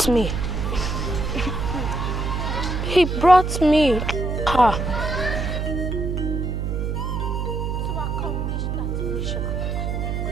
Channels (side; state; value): right; noise; hum, 1 dB below the sound